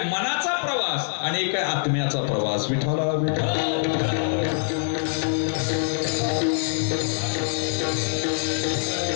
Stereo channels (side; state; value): right; silent; digital silence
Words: मनाचा प्रवास आणि एक आहे आत्म्याचा प्रवास. विठ्ठला